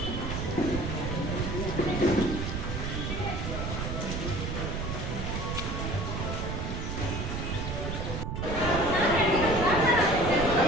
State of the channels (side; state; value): right; noise; rumble, 3 dB below the sound